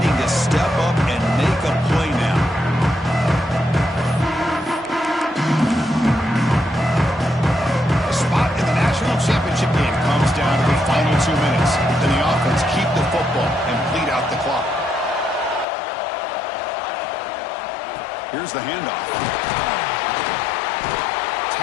to step up and make a play now. Championship game comes down to the final 2 minutes. Then the offense keep the football and bleed out the clock. Here's the handoff.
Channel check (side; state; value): right; drops out; at 15.7 s